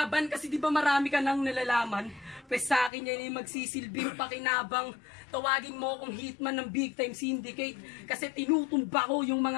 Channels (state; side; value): drops out; right; at 2.9 s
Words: Kasi di ba marami ka nang nalalaman? Pues sa akin yan yung magsisilbing pakinabang. Tawagin mo akong hitman ng big time syndicate. Kasi tinutumba ko yung